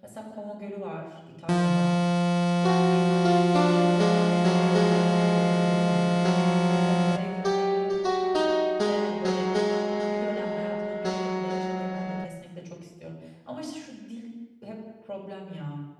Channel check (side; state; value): both; identical; correlation 1.00